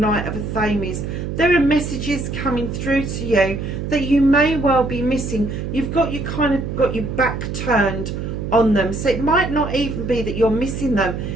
of Athames. There are messages coming through to you that you may well be missing. You've got your back turned on them. So it might not even be that you're missing them.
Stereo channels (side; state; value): right; noise; hum, 5 dB below the sound